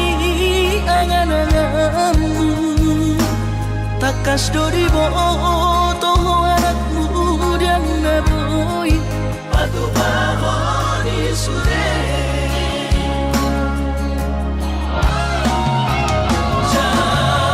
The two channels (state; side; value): identical; both; correlation 1.00